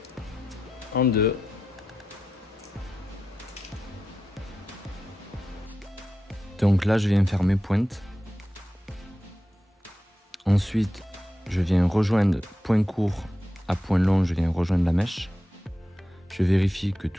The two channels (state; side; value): normal; both; correlation 0.90